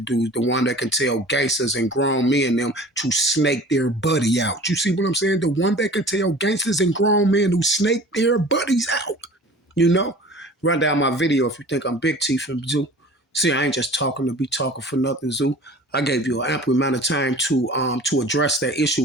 the one that can tell gangsters and grown men them to snake their buddy out. You see what I'm saying? The one that can tell gangsters and grown men who snake their buddies out. You know? Run down my video if you think I'm Big T from Zoo. See, I ain't just talking to be talking for nothing, Zoo. I gave you an ample amount of time to address that issue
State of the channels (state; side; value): normal; both; correlation 0.43